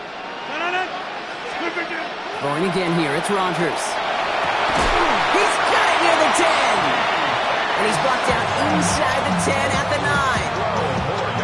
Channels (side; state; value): both; identical; correlation 1.00